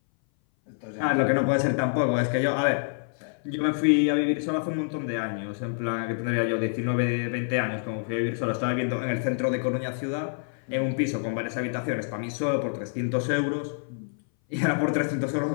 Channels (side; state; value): right; silent; 59 dB below the other